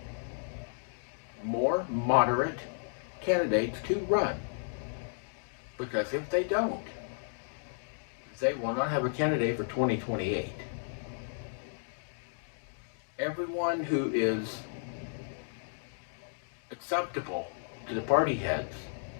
more moderate candidates to run. Because if they don't, they will not have a candidate for 2028. Everyone who is acceptable to the party heads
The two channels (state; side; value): silent; right; digital silence